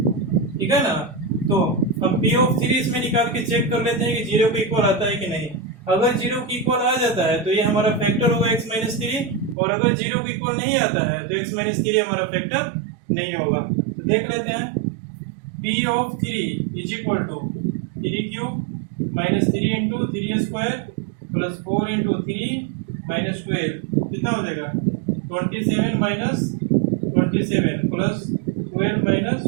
ठीक है ना। तो अब p ऑफ 3 इसमें निकाल के चेक कर लेते हैं कि 0 के इक्वल आता है कि नहीं। अगर 0 के इक्वल आ जाता है तो ये हमारा फैक्टर होगा x माइनस 3, और अगर 0 के इक्वल नहीं आता है तो x माइनस 3 हमारा फैक्टर नहीं होगा। तो देख लेते हैं, p of 3 is equal to 3 cube minus 3 into 3 square plus 4 into 3 minus 12 कितना हो जाएगा, 27 minus 27 plus 12 minus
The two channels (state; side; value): drops out; left; at 9.6 s